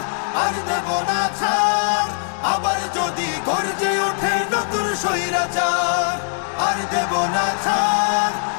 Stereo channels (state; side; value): silent; right; 65 dB below the other